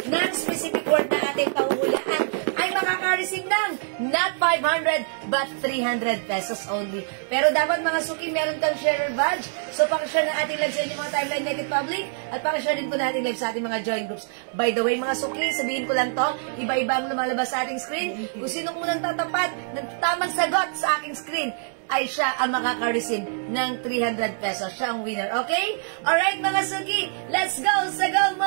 ng specific word na ating pahuhulaan ay makaka-receive ng not 500 but 300 pesos only. Pero dapat mga suki, meron kang sharer badge. So pakishare ng ating live sa inyong mga timeline naked public at pakishare din po natin live sa ating mga join groups. By the way mga suki, sabihin ko lang to, iba-iba ang lumalabas sa ating screen. Kung sino unang tatapat ng tamang sagot sa aking screen, ay siya ang makaka-receive ng 300 pesos. Siya ang winner, okay? Alright mga suki, let's go! Sagaw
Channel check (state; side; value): silent; left; digital silence